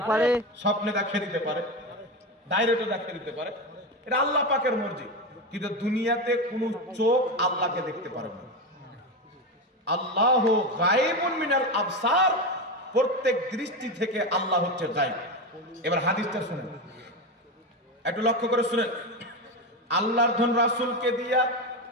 পারে। স্বপ্নে দেখিয়ে দিতে পারে, ডাইরেক্টও দেখিয়ে দিতে পারে, এটা আল্লাহ পাকের মর্জি। কিন্তু দুনিয়াতে কোন চোখ আল্লাহকে দেখতে পারে না। আল্লাহ গায়েবুন মিনাল আবসার, প্রত্যেক দৃষ্টি থেকে আল্লাহ হচ্ছে গায়েব। এবার হাদিসটা শুনেন, একটু লক্ষ্য করে শুনেন। আল্লাহর ধন রাসূলকে দিয়া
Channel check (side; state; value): both; normal; correlation 0.17